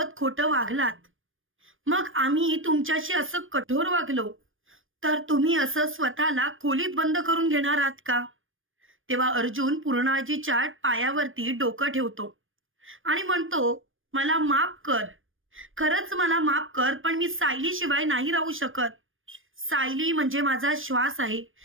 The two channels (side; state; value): left; late; 0.59 ms